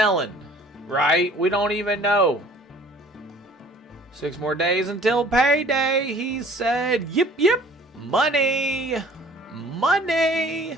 Right? We don't even know. 6 more days until payday, he said. Yip, yip. Money. Money.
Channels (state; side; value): normal; both; correlation 0.51